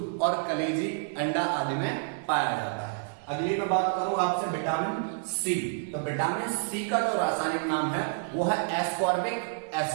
और कलेजी, अंडा आदि में पाया जाता है। अगली मैं बात करूं आपसे विटामिन C। तो विटामिन C का जो रासायनिक नाम है वो है एस्कॉर्बिक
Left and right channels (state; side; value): silent; left; digital silence